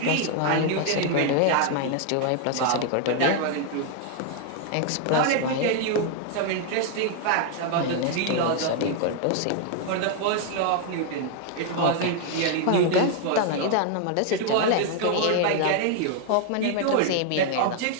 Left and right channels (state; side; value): different; both; correlation 0.00